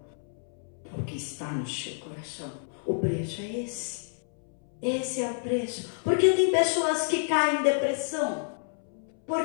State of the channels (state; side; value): silent; right; 58 dB below the other